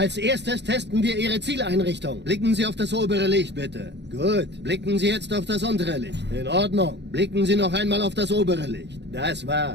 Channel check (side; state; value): left; late; 0.50 ms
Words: erstes testen wir Ihre Zieleinrichtung. Blicken Sie auf das obere Licht, bitte. Gut. Blicken Sie jetzt auf das untere Licht. In Ordnung. Blicken Sie noch einmal auf das obere Licht. Das